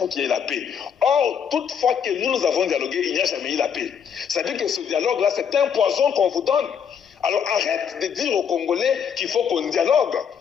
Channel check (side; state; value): right; quieter; 7.5 dB